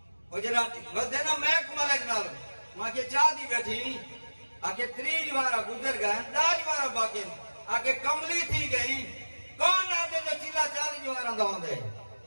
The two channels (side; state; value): both; inverted; correlation -1.00